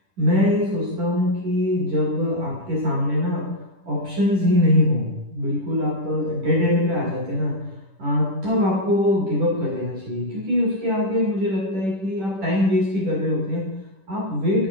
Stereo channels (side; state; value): left; late; 10 ms